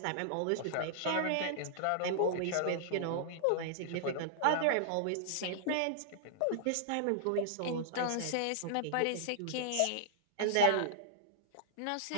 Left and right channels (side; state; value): both; different; correlation -0.01